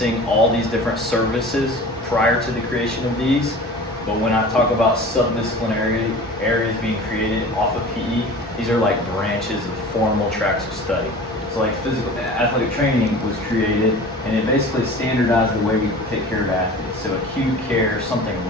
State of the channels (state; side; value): normal; both; correlation 0.39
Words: all these different services prior to the creation of these, but when I talk about subdisciplinary areas being created off of PE, these are like branches of formal tracks of study. So like athletic training was created, and it basically standardized the way we take care of athletes. So acute care, something